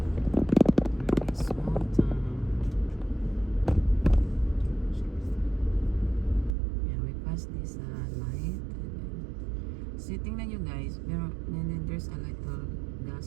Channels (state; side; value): drops out; left; at 6.5 s